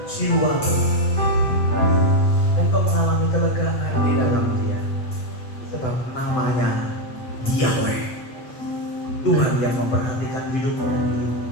jiwamu, dan kau mengalami kelegaan di dalam Dia, sebab namanya Yahweh, Tuhan yang memperhatikan hidupmu,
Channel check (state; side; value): late; right; 7.9 ms